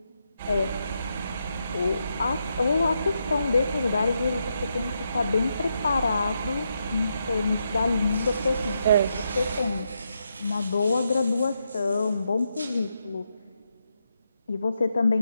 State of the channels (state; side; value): inverted; both; correlation -0.82